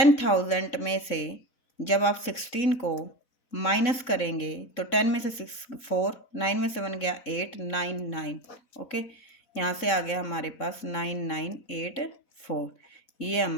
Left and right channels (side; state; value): right; late; 4.0 ms